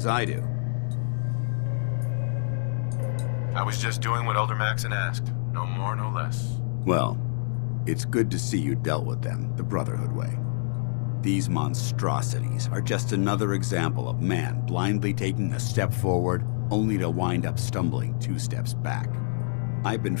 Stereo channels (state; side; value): silent; right; digital silence